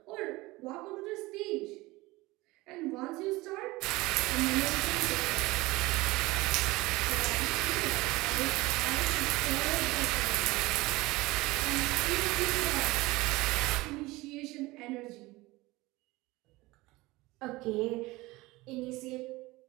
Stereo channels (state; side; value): quieter; left; 20.9 dB